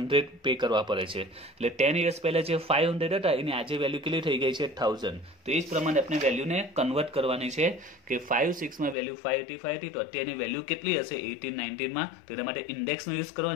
પે કરવા પડે છે. એટલે 10 years પહેલા જે 500 હતા એની આજે વેલ્યુ કેટલી થઈ ગઈ છે? 1000. તો એ જ પ્રમાણે આપણે વેલ્યુને કન્વર્ટ કરવાની છે કે 5-6 માં વેલ્યુ 585 હતી, તો અત્યારની વેલ્યુ કેટલી હશે 18-19 માં? તો એના માટે ઇન્ડેક્સનો યુઝ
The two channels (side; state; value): right; drops out; at 9.0 s